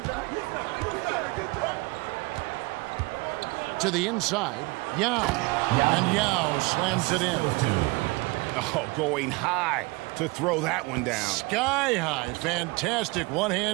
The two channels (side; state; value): left; quieter; 25.3 dB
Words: To the inside, Yao. And Yao slams it in. Oh, going high to throw that one down. Sky high. Fantastic